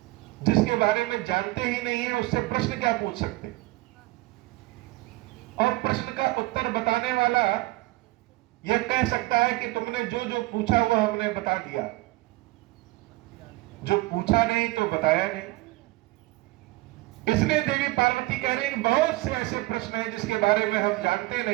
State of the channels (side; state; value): left; quieter; 20.4 dB